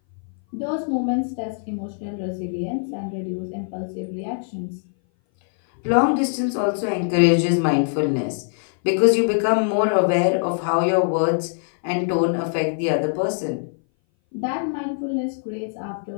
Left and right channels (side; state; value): right; silent; 59 dB below the other